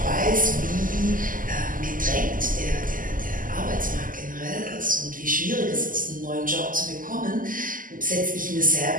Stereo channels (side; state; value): left; late; 0.40 ms